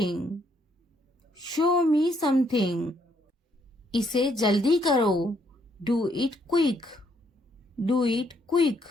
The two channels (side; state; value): both; normal; correlation 0.71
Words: show me something. इसे जल्दी करो, do it quick, do it quick.